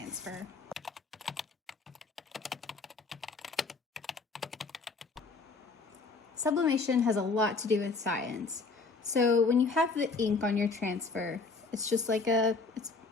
Sublimation has a lot to do with science. So when you have the ink on your transfer, it's just like it's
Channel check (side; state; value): right; quieter; 4.1 dB